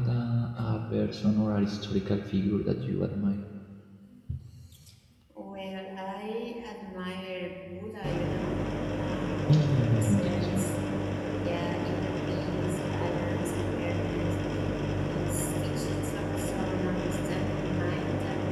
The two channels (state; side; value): identical; both; correlation 1.00